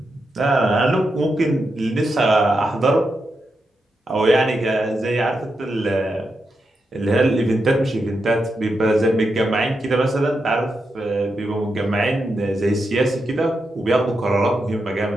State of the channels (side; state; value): both; normal; correlation 0.86